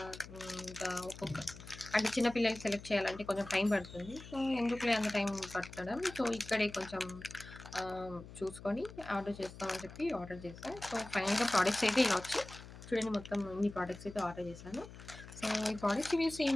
ఇంకా అంటే చిన్న పిల్లలకి సెలెక్ట్ చేయాలంటే కొంచెం టైం పడుతుంది. సో, ఎందుకులే అంత టైం పట్టడం. సో, ఇక్కడే కొంచెం చూసుకొని ఆర్డర్ చేస్తామని చెప్పి ఆర్డర్ చేశా. సో, ఫైనల్‌గా ప్రొడక్ట్స్ అయితే ఇలా వచ్చాయి. చూడండి, మొత్తం ఇన్ని ప్రొడక్ట్స్ అయితే ఆర్డర్ చేశాను. సో, ఈ ప్రొడక్ట్స్ రివ్యూస్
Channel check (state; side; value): noise; left; hum, 15 dB below the sound